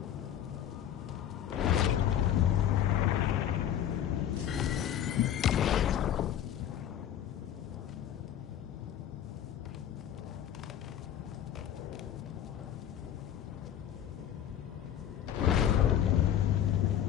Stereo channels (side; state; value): right; quieter; 10.4 dB